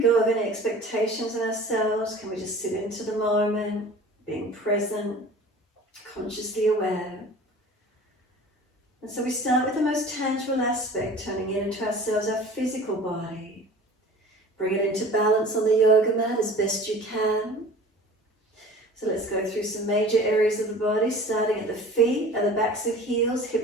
go of any expectations in ourselves. Can we just sit into the moment, being present, consciously aware? And so we start with the most tangible aspect, turning it into ourselves, our physical body. Bring it into balance on the yoga mat as best you can. So let's go through some major areas of the body, starting at the feet, at the backs of heels,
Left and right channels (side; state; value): both; normal; correlation 0.43